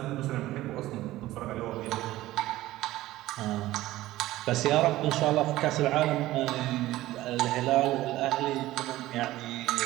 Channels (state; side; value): quieter; left; 16.2 dB